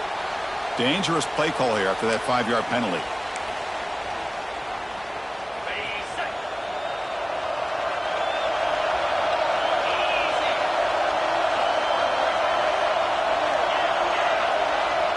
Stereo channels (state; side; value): identical; both; correlation 1.00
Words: Dangerous play call here after that 5-yard penalty.